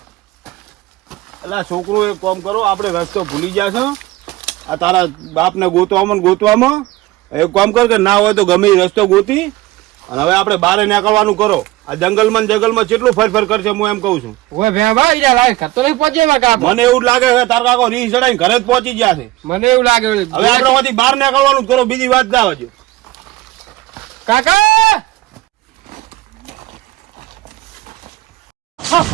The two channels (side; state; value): left; quieter; 17.7 dB